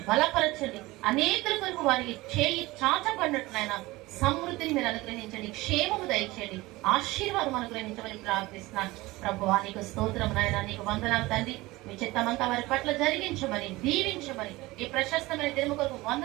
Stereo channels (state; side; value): quieter; left; 20.2 dB